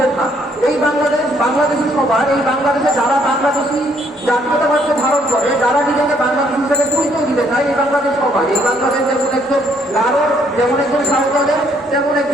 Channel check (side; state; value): both; normal; correlation 0.67